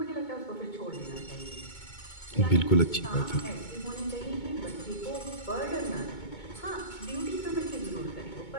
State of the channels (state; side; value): late; right; 2.2 ms